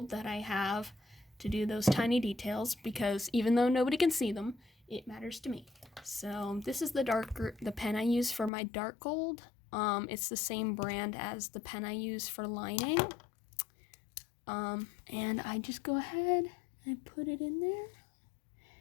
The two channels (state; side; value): drops out; right; at 8.5 s